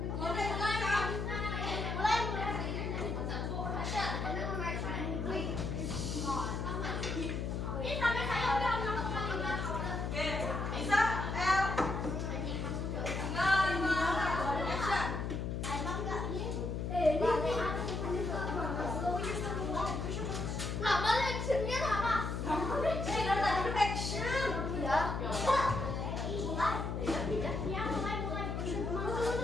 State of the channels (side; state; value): left; noise; hum, 2 dB below the sound